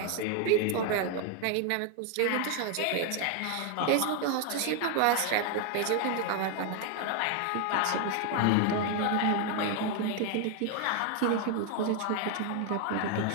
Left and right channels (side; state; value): both; different; correlation 0.01